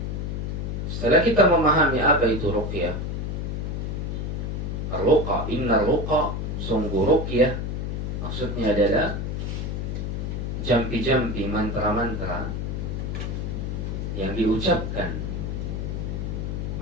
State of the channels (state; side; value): noise; left; hum, 3 dB below the sound